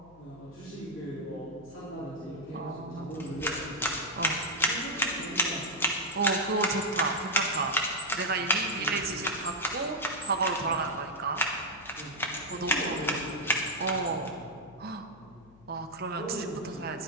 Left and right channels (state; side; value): noise; left; hum, 25 dB below the sound